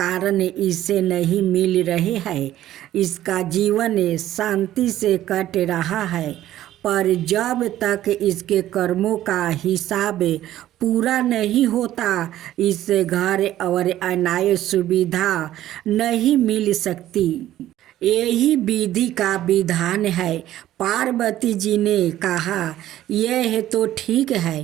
इसे नहीं मिल रहे हैं। इसका जीवन शांति से कट रहा है पर जब तक इसके कर्मों का हिसाब पूरा नहीं होता इससे घर और अन्य सुविधा नहीं मिल सकती। यही विधि का विधान है। पार्वती जी ने कहा यह तो ठीक है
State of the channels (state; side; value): quieter; left; 13.4 dB